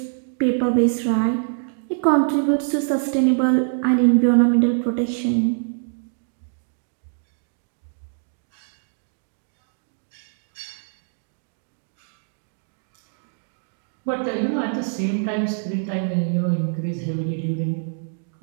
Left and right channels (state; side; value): silent; left; digital silence